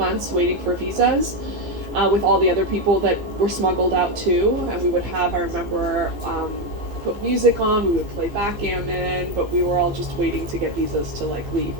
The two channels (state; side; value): late; left; 15 ms